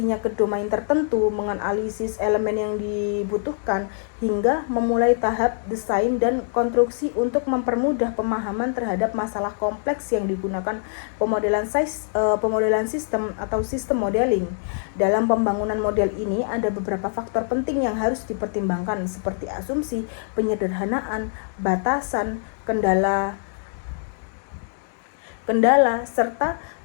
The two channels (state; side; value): silent; right; digital silence